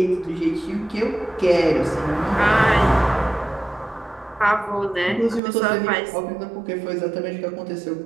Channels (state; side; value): drops out; left; at 5.4 s